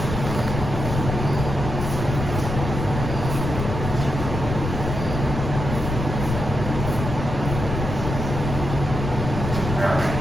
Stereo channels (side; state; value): left; noise; rumble, 4 dB below the sound